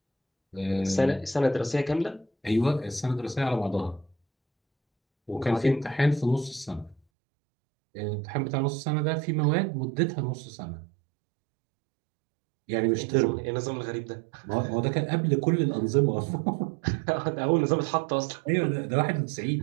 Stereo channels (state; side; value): drops out; left; at 7.0 s